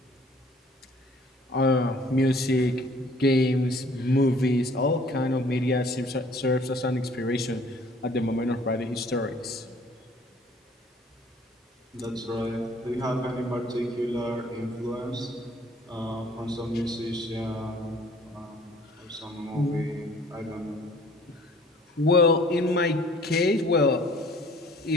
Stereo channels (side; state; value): both; normal; correlation 0.54